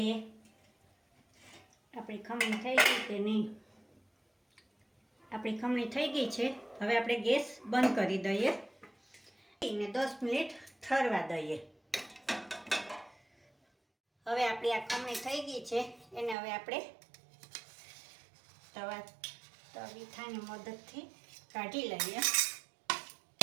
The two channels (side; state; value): left; drops out; at 16.4 s